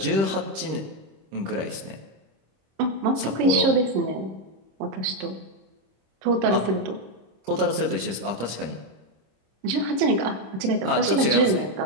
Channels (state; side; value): late; left; 26 ms